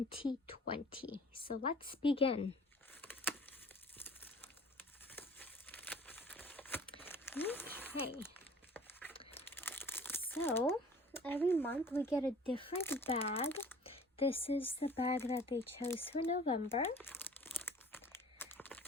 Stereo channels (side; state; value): both; normal; correlation 0.48